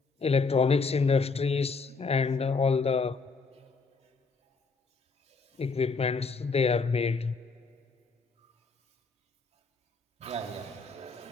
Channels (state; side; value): quieter; right; 4.5 dB